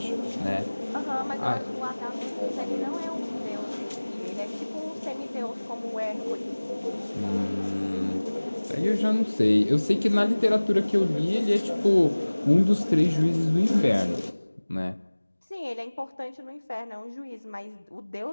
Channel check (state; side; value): inverted; both; correlation -1.00